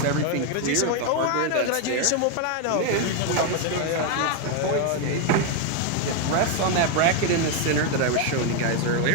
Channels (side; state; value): both; different; correlation 0.01